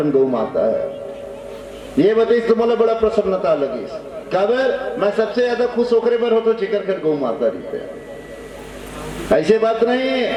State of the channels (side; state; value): both; identical; correlation 1.00